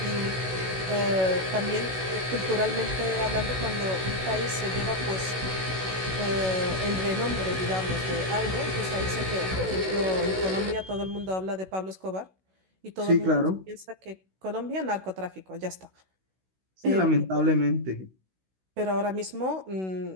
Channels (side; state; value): left; late; 16 ms